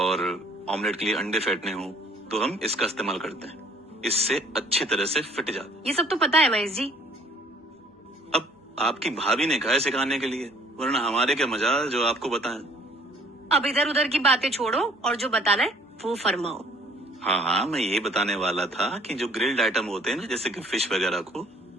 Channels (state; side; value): normal; both; correlation 0.58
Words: ऑमलेट के लिए अंडे फेंटने हो तो हम इसका इस्तेमाल करते हैं। इससे अच्छी तरह से फिट जाता। ये सब तो पता है महेश जी। अब आपकी भाभी ने कहा है सिखाने के लिए, वरना हमारे क्या मजाल जो आपको बताएं। अब इधर उधर की बातें छोड़ो और जो बताना है वो फरमाओ। हाँ, मैं ये बताने वाला था कि जो ग्रिल्ड आइटम होते हैं ना, जैसे कि फिश वगैरह को